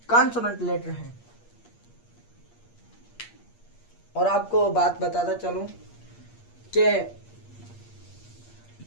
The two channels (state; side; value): late; right; 8.5 ms